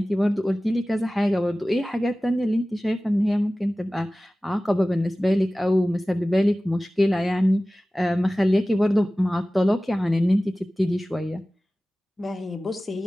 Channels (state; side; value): normal; both; correlation 0.97